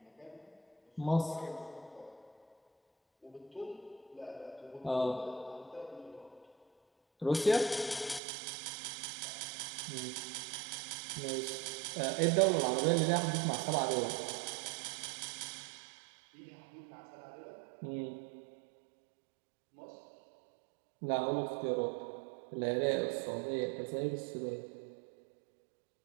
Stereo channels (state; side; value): drops out; left; at 8.2 s